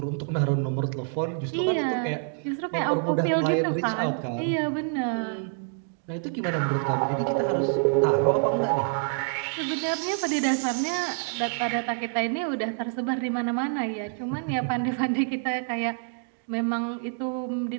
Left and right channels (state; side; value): silent; left; 60 dB below the other